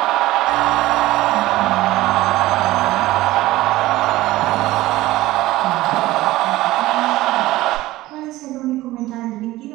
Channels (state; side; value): quieter; left; 17.2 dB